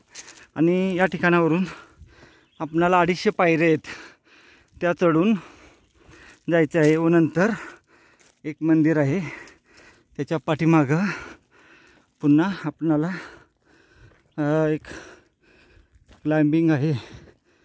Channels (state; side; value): identical; both; correlation 1.00